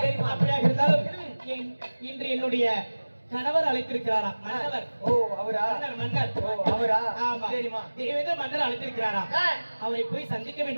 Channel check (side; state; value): both; inverted; correlation -1.00